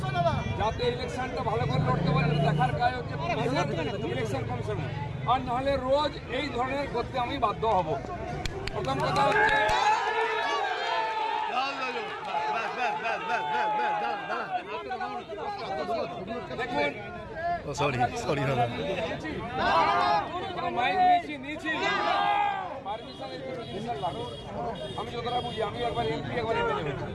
যাতে ইলেকশনটা ভালো করে লড়তে পারে দেখার কাজ হচ্ছে ইলেকশন কমিশনার আর নাহলে রোজ এই ধরনের করতে আমি বাধ্য হব প্রথম কথা হচ্ছে দেখুন মাইক নিয়েছি আমি যতটা বুঝি আমি একবার এমপি একবার এমএলএ হয়েছি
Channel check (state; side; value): identical; both; correlation 1.00